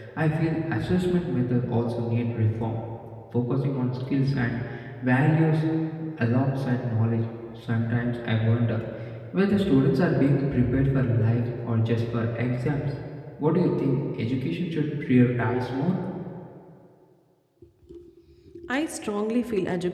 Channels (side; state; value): both; identical; correlation 1.00